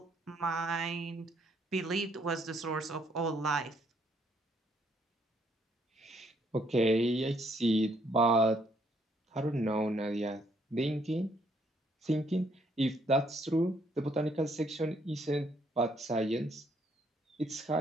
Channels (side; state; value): both; normal; correlation 0.69